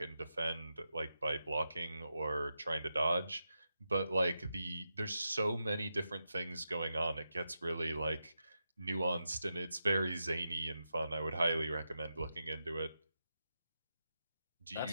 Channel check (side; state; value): both; inverted; correlation -0.88